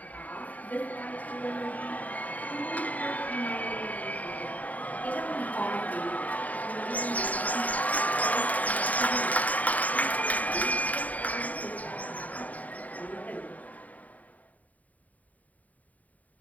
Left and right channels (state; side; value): late; right; 0.073 ms